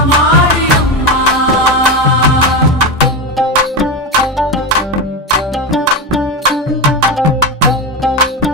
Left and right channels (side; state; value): both; normal; correlation 0.16